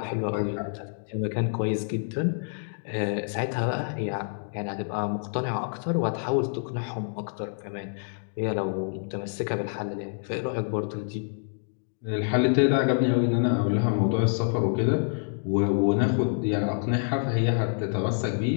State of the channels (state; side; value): silent; right; digital silence